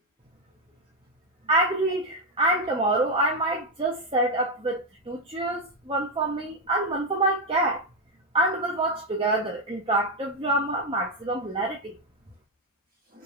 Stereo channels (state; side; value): normal; both; correlation 0.05